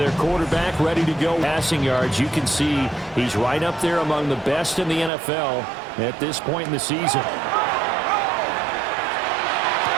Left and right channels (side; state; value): left; drops out; at 5.1 s